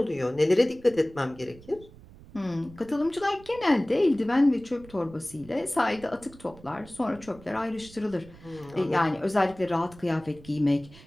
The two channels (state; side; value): noise; right; rumble, 21 dB below the sound